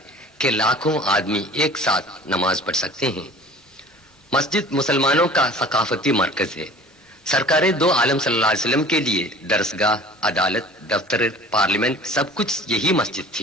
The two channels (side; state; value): both; normal; correlation 0.45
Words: کہ لاکھوں آدمی ایک ساتھ نماز پڑھ سکتے ہیں۔ مسجد مسلمانوں کا ثقافتی مرکز ہے۔ سرکار دو عالم صلی اللہ علیہ وسلم کے لیے درسگاہ، عدالت، دفتر، پارلیمنٹ سب کچھ یہی مسجد